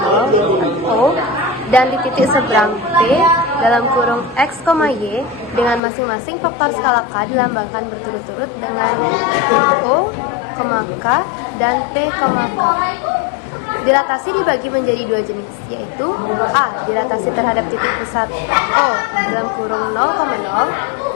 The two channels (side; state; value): right; drops out; at 5.8 s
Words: O, dan di titik seberang P dalam kurung X, Y dengan masing-masing faktor skala K dilambangkan berturut-turut dengan O, K, dan P, K. Dilatasi dibagi menjadi dua jenis, yaitu A. Dilatasi terhadap titik pusat O dalam kurung 0,0.